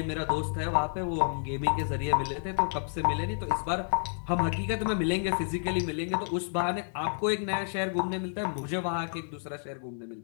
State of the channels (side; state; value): right; silent; digital silence